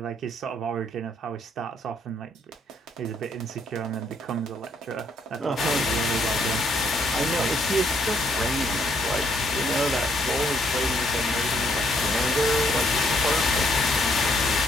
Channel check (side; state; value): both; normal; correlation 0.70